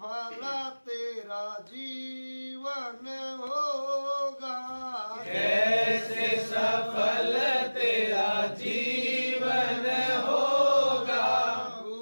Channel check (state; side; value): inverted; both; correlation -1.00